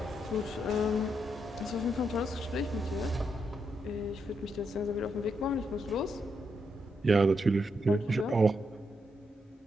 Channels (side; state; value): both; normal; correlation 0.81